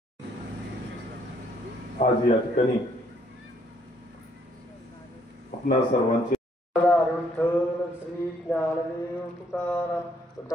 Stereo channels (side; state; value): both; normal; correlation 0.67